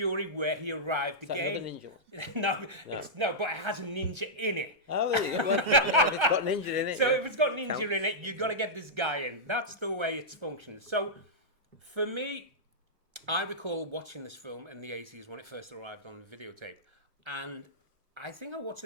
where he arrived again. Ninja? No, but it has a ninja in it. Oh, there you go. Well, yeah, if it's got ninja in it. So if it's got ninja in it, you've got to get this guy in. That's the way it's functioned. So for me, I recall watching this film in the 80s when it first arrived on videotape. And I think I watched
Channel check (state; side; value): late; left; 1.3 ms